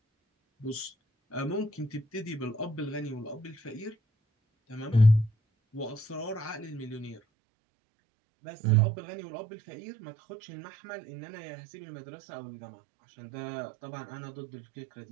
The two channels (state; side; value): drops out; left; at 7.2 s